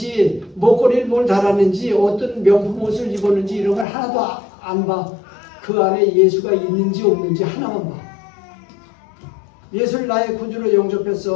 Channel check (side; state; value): right; drops out; at 3.9 s